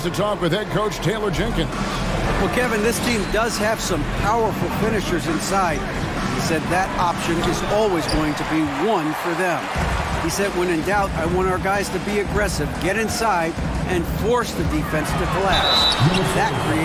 to talk with head coach Taylor Jenkins. Well, Kevin, this team does have some powerful finishers inside. He said that option is always going to be one for them. He said, when in doubt, I want our guys to be aggressive, get inside, and force the defense to collapse. That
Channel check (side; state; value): both; identical; correlation 1.00